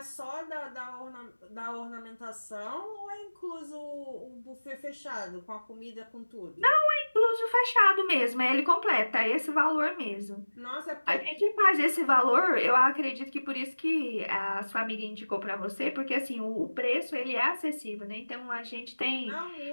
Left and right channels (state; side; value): inverted; both; correlation -1.00